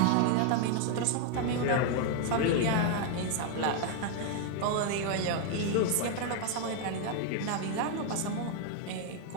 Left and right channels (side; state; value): both; different; correlation 0.00